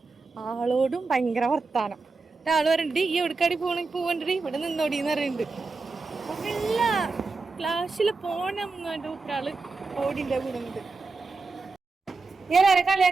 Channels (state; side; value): quieter; left; 4.0 dB